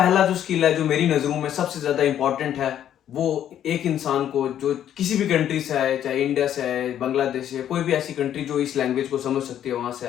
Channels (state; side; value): quieter; right; 10.5 dB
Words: जो स्किल है जो मेरी नजरों में सबसे ज्यादा इंपॉर्टेंट है, वो एक इंसान को जो किसी भी कंट्री से आए, चाहे इंडिया से आए, बांग्लादेश से, कोई भी ऐसी कंट्री जो इस लैंग्वेज को समझ सकती है वहां से